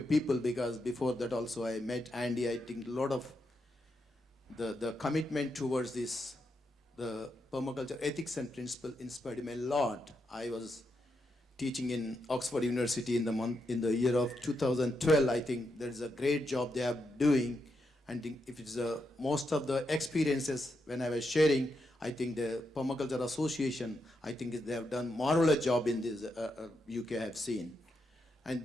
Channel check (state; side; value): normal; both; correlation 0.83